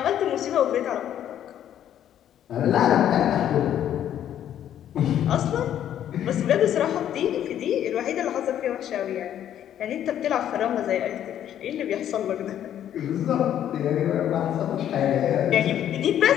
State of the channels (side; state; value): right; quieter; 10.7 dB